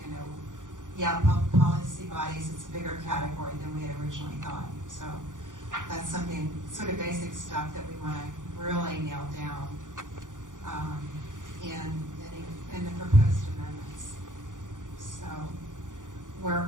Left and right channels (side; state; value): left; late; 0.88 ms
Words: policy bodies, it's a bigger category than we had originally thought. So that's something, sort of basic stuff that we want to really nail down in the proposed amendments. So